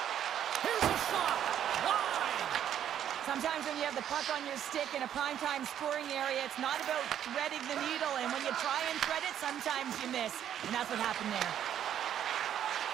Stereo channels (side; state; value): left; quieter; 10.1 dB